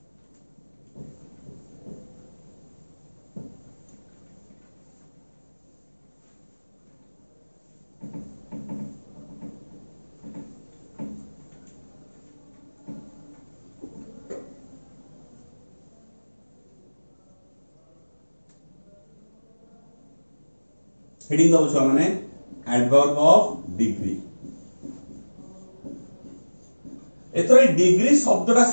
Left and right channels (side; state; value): both; inverted; correlation -1.00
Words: हेडिंग दबो छुआ माने एडवर्ब ऑफ डिग्री एतरे डिग्री शब्दटा